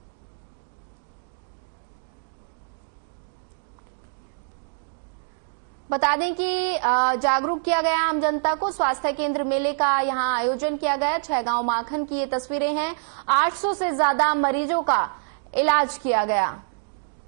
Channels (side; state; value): left; silent; digital silence